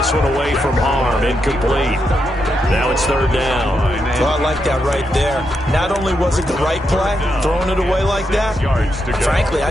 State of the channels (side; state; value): both; normal; correlation 0.83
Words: one away from harm. Incomplete. Now it's 3rd down. Well, I like that right there. Not only was it the right play, throwing it away like that, frankly, I